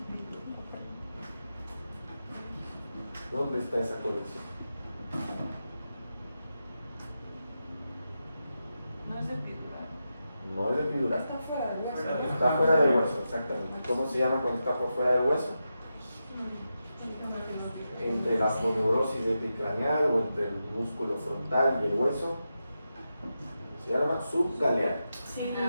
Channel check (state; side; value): inverted; both; correlation -0.89